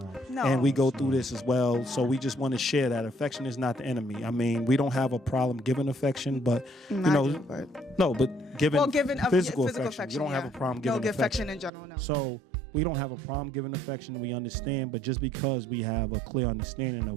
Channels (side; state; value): left; drops out; at 11.7 s